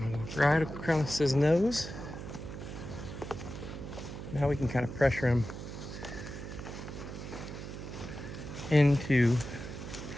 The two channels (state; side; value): noise; right; hum, 9 dB below the sound